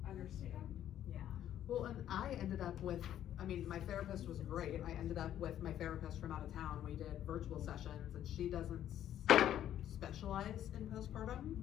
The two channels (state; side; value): quieter; right; 11.2 dB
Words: understand. Yeah. Well, and I ended up with, I mean, my therapist was great. I ended up with my therapist from out of town. We did virtual sessions, and she doesn't specialize in